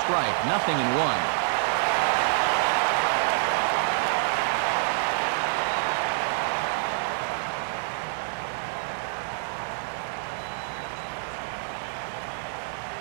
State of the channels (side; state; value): left; silent; digital silence